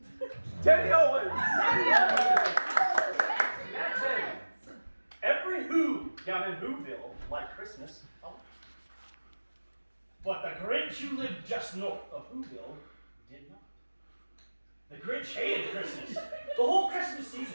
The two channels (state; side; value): inverted; both; correlation -1.00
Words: Teddy Owens! That's it. Every Who down in Whoville liked Christmas. Oh. But the Grinch who lived just north of Whoville did not. The Grinch hated Christmas. The whole Christmas